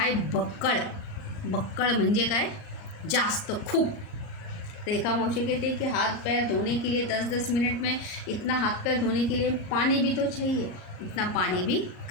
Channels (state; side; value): late; right; 39 ms